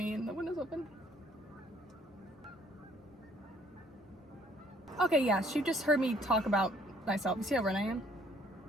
and the window's open. Okay, yeah, she just heard me talk about myself. You see how red I am?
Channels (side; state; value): both; normal; correlation 0.61